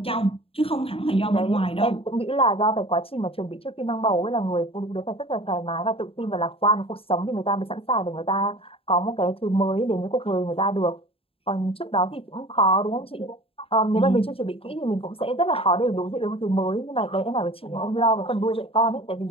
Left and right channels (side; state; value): right; late; 0.27 ms